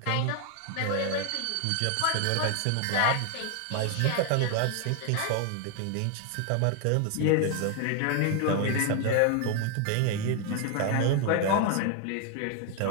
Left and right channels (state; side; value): different; both; correlation 0.01